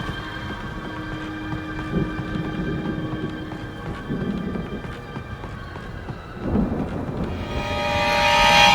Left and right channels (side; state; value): both; identical; correlation 1.00